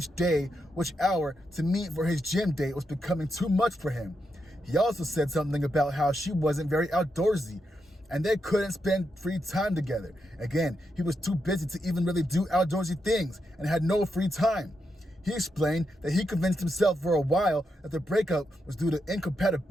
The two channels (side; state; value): both; normal; correlation 0.84